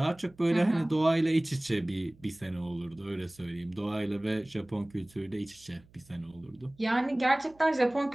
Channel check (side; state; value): right; noise; hum, 28 dB below the sound